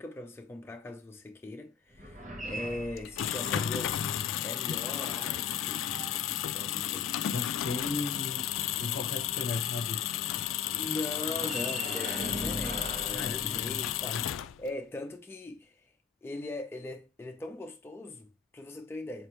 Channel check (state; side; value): quieter; right; 6.8 dB